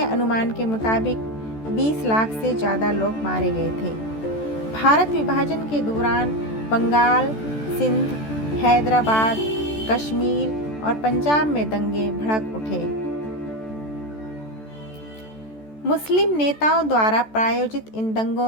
अनुमान के मुताबिक 20 लाख से ज़्यादा लोग मारे गए थे। भारत विभाजन के दौरान बंगाल, सिंध, हैदराबाद, कश्मीर और पंजाब में दंगे भड़क उठे। मुस्लिम नेताओं द्वारा प्रायोजित इन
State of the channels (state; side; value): late; right; 14 ms